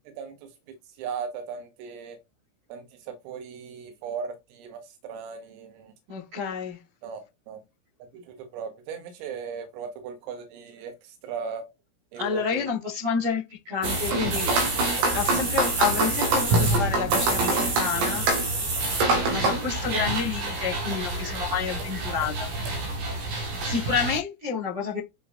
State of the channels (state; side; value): late; left; 17 ms